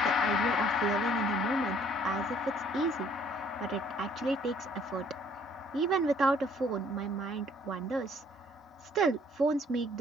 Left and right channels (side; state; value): both; normal; correlation 0.60